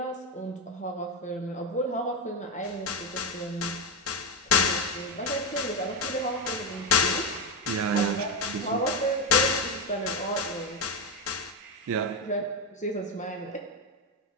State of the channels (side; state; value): both; normal; correlation 0.09